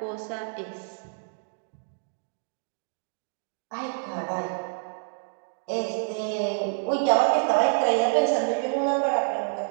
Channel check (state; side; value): silent; left; digital silence